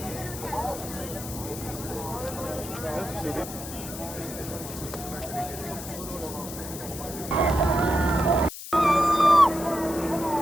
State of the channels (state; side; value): noise; left; hiss, 10 dB below the sound